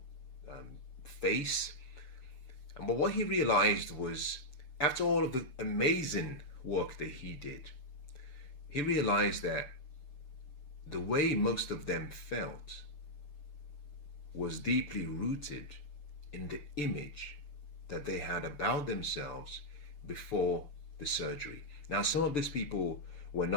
face. But what he realized was, after all of the amazing work that he did, he realized that the way most of them felt was deeply rooted in the image that they had about themselves before the surgery. Now, some of these people were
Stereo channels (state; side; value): late; right; 6.8 ms